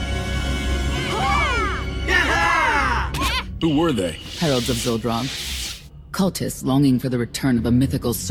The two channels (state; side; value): identical; both; correlation 1.00